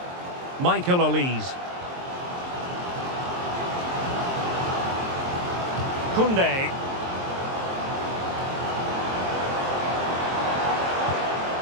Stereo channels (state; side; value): late; left; 23 ms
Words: Michael Olise. Koundé.